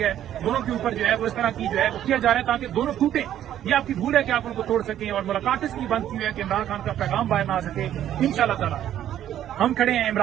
ہے، دونوں کے اوپر جو ہے وہ اس طرح کی جو ہے وہ کیا جا رہا ہے تاکہ دونوں ٹوٹیں۔ یہ آپ کی بھول ہے کہ آپ ان کو توڑ سکیں، اور ملاقات اس کی بند کی ہوئی ہے کہ عمران خان کا پیغام باہر نہ آ سکے۔ انشاءاللہ تعالیٰ ہم کھڑے ہیں،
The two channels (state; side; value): quieter; left; 11.3 dB